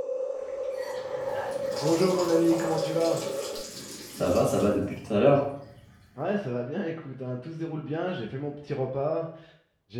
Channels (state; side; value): identical; both; correlation 1.00